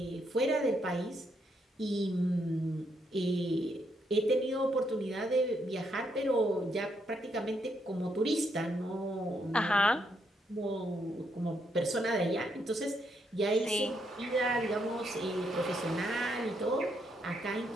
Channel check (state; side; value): normal; both; correlation 0.76